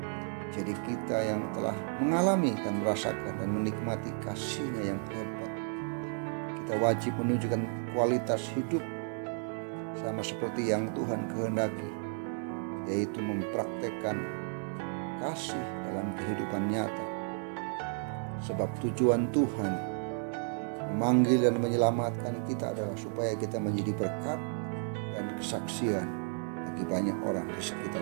Jadi kita yang telah mengalami dan merasakan dan menikmati kasih-Nya yang hebat, kita wajib menunjukkan kualitas hidup sama seperti yang Tuhan kehendaki, yaitu mempraktekkan kasih dalam kehidupan nyata. Sebab tujuan Tuhan memanggil dan menyelamatkan kita adalah supaya kita menjadi berkat dan kesaksian bagi banyak orang di sekitar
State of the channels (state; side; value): silent; left; 56 dB below the other